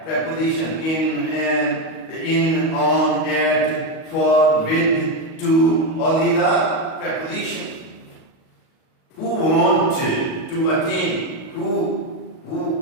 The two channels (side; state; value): right; late; 37 ms